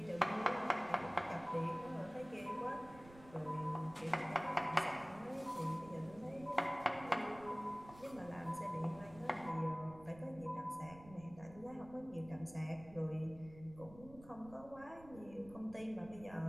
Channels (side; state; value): right; noise; rumble, 19 dB below the sound